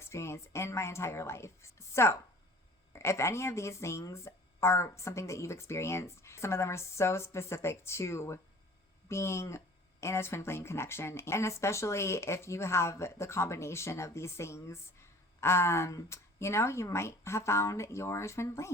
in my entire life. So, if any of these things are something that you've experienced, some of them are so specific to being in a twin flame connection. And especially if you have the combination of these things, you know, you might have found your twin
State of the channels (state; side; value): normal; both; correlation 0.47